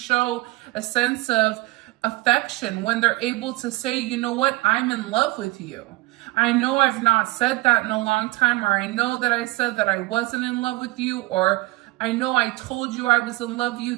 a sense of affection, when they're able to say, you know what, I'm in love with you. I know I've not said that in a long time, or I know that I said that I wasn't in love with you, or I know I told you I was in love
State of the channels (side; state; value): left; quieter; 21.2 dB